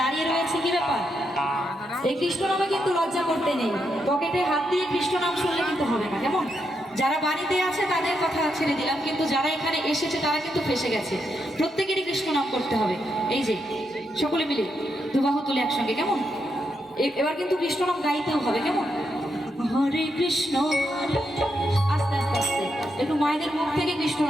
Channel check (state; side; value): normal; both; correlation 0.82